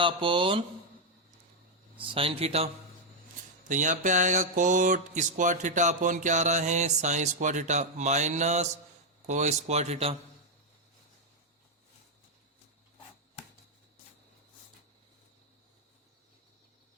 अपॉन साइन थीटा। तो यहाँ पे आएगा कोट स्क्वायर थीटा अपॉन क्या आ रहा है, साइन स्क्वायर थीटा माइनस को स्क्वायर थीटा।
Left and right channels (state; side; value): normal; both; correlation 0.01